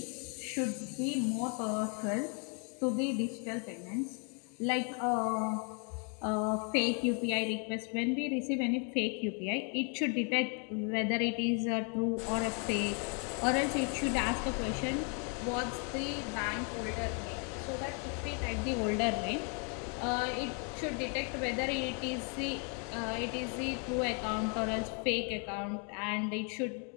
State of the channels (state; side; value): quieter; right; 39.0 dB